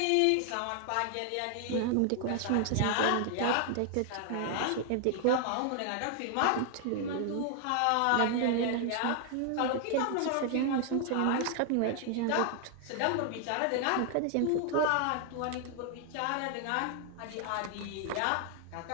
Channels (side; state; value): both; different; correlation 0.00